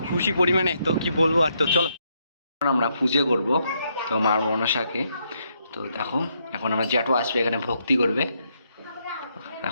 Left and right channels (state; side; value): inverted; both; correlation -0.76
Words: খুশি পরিমাণে, তো কি বলবো আর। তো চলো আমরা পুজো করব তো মার মনসাকে। তো দেখো এখন আমরা জ্যাঠো আসবে এখানে ভক্তি করবে।